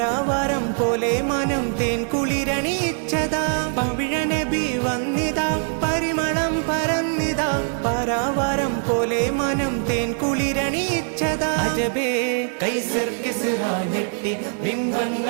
പോലെ മനം തേൻ കുളിരണിയിച്ചതാ। പവിഴനബി വന്നിതാ പരിമളം പരന്നിതാ, പരാവാരം പോലെ മനം തേൻ കുളിരണിയിച്ചതാ। അജബേ കൈസർ കിസ്റാ ഞെട്ടി,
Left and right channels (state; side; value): silent; left; digital silence